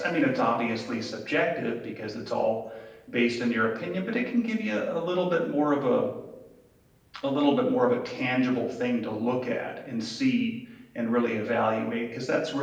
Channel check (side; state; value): both; identical; correlation 1.00